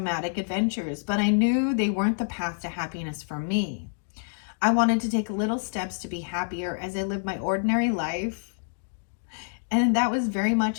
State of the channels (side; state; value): right; silent; digital silence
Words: adventures, but I knew they weren't the path to happiness for me. I wanted to take little steps to be happier as I lived my ordinary life. And that was very